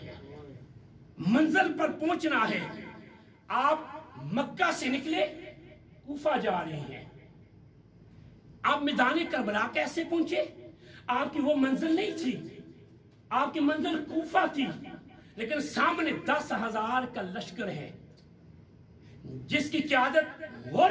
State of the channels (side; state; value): both; identical; correlation 1.00